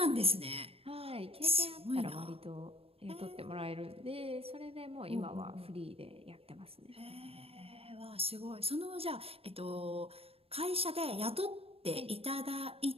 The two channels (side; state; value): left; late; 0.28 ms